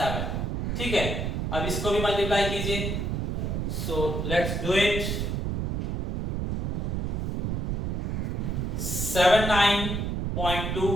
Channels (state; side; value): noise; right; rumble, 1 dB below the sound